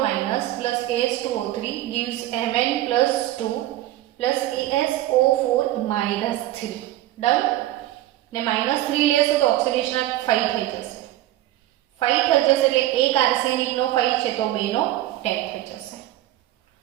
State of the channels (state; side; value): quieter; left; 14.8 dB